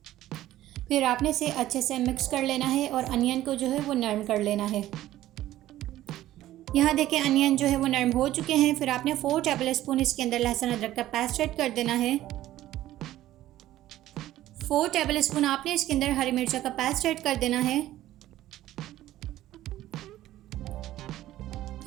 फिर आपने इसे अच्छे से मिक्स कर लेना है, और अनियन को जो है वो नरम कर लेना है। यहाँ देखें, अनियन जो है वो नरम हो चुके हैं। फिर आपने 4 टेबल स्पून इसके अंदर लहसुन अदरक का पेस्ट ऐड कर देना है। 4 टेबल स्पून आपने इसके अंदर हरी मिर्च का पेस्ट ऐड कर देना है।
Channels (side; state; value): left; quieter; 14.3 dB